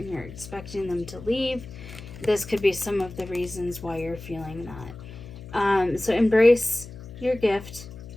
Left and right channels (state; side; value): noise; left; hum, 15 dB below the sound